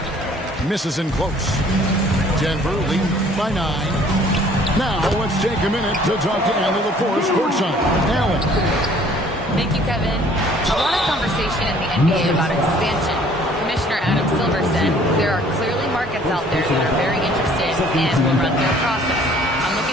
Misses in close. Denver leading by 9. Now let's take a minute to talk to Allie LaForce courtside. Allie. Thank you, Kevin. A lot of conversation in the NBA about expansion. Commissioner Adam Silver said there are clearly markets out there that are very interested and will run their process. I'm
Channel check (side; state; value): both; normal; correlation 0.56